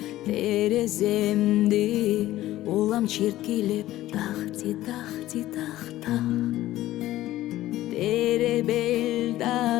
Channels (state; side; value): quieter; right; 15.1 dB